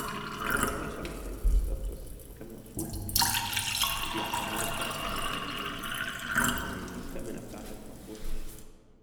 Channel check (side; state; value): both; identical; correlation 1.00